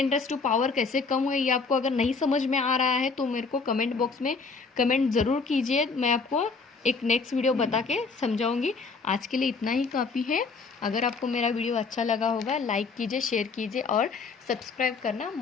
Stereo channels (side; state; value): right; quieter; 4.5 dB